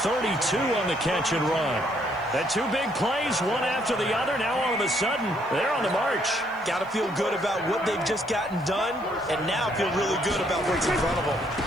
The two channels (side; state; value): left; noise; hiss, 30 dB below the sound